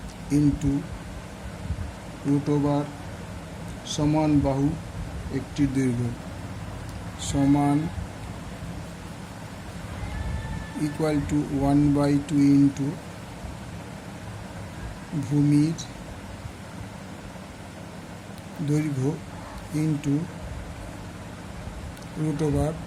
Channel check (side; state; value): both; identical; correlation 1.00